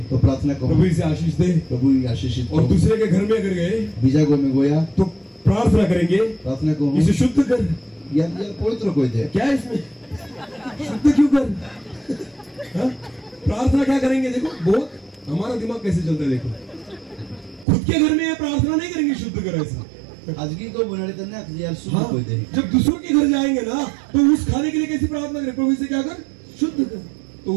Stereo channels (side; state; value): left; drops out; at 17.7 s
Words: तो प्रार्थना को प्रभु इसे आशीष दे। प्रभु आशीषित और दूसरे के घर में अगर गए बीजा गो में गोया तो प्रार्थना करेंगे, प्रार्थना को इसे शुद्ध कर। या पवित्र कोई दे। क्या है इसमें? शुद्ध क्यों कर? हाँ? प्रार्थना क्या करेंगे? देखो बहुत हमारा दिमाग कैसे चलता है। देखो, खुद के घर में प्रार्थना नहीं करेंगे शुद्ध कर ऐसा। आजगी को बनाने तन्ने यार शुद्ध हाँ, कोई दे। जब दूसरों के घर जाएंगे ना तो उस खाने के लिए कैसी प्रार्थना करें? प्रभु इसे क्या कर? शुद्ध कर। तो